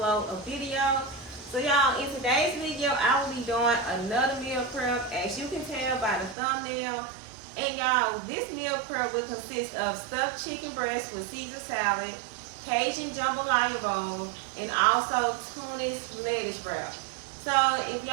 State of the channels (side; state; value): left; drops out; at 6.4 s